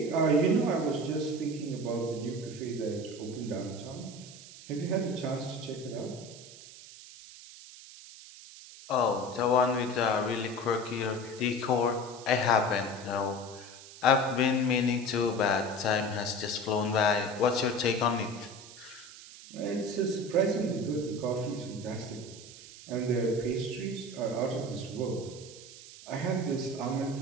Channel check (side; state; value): right; noise; hiss, 17 dB below the sound